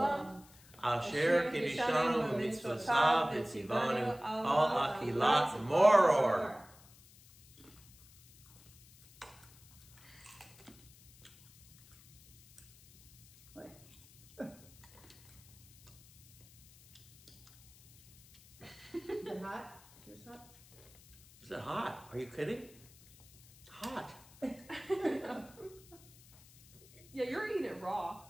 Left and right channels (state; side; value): noise; left; hiss, 24 dB below the sound